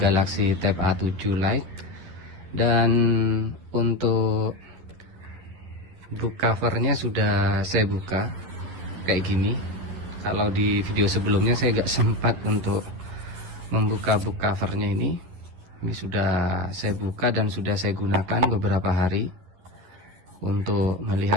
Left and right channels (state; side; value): late; left; 11 ms